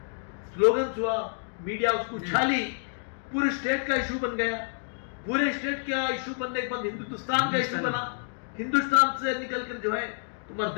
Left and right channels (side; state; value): right; silent; digital silence